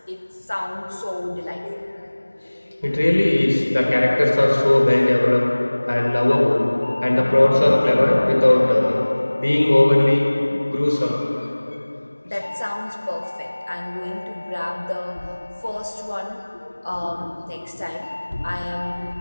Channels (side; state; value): both; inverted; correlation -1.00